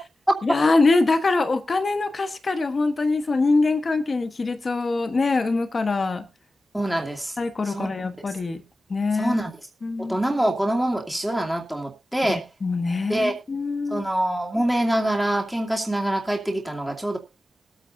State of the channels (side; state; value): both; normal; correlation 0.94